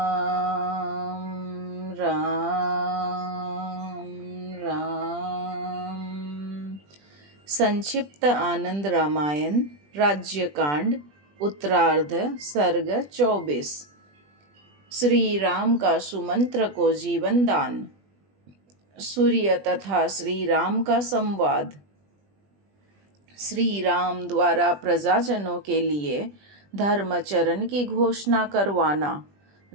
राम राम। संक्षिप्त आनंद रामायण राज्यकांड उत्तरार्ध सर्ग 24। श्री राम का सुमंत्र को जीवन दान। सूर्य तथा श्री राम का संवाद। श्री राम द्वारा प्रजाजनों के लिए धर्मचरण की घोषणा करवाना।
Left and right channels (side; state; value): left; late; 20 ms